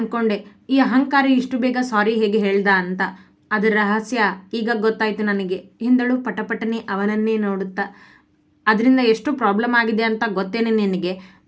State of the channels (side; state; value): both; identical; correlation 1.00